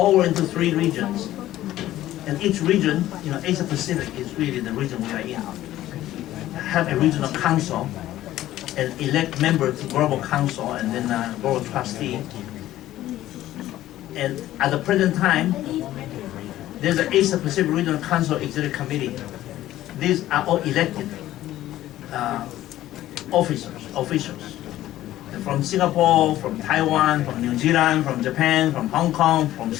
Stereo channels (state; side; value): quieter; right; 14.2 dB